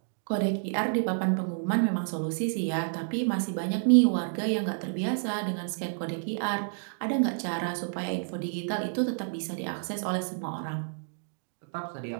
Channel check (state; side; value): silent; left; digital silence